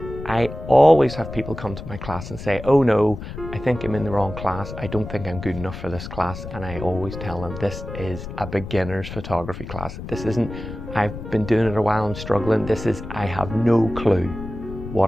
I always have people come to my class and say, oh no, I think I'm in the wrong class. I don't think I'm good enough for this class. And I always tell them this is a beginner's photography class. This isn't, I've been doing it a while, I'm struggling. This is, I have no clue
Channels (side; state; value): left; noise; rumble, 10 dB below the sound